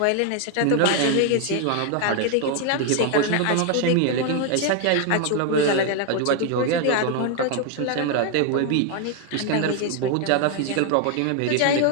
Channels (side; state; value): both; different; correlation 0.01